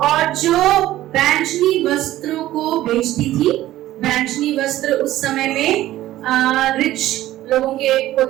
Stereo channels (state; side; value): quieter; left; 14.8 dB